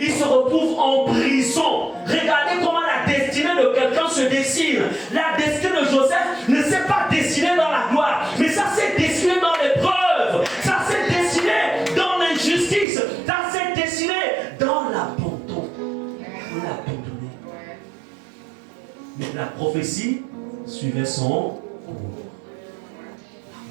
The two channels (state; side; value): drops out; left; at 12.9 s